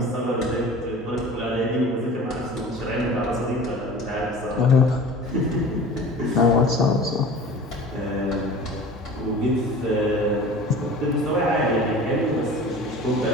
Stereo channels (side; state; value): both; normal; correlation 0.40